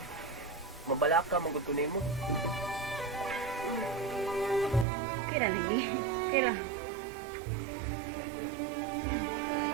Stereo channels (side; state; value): left; drops out; at 4.9 s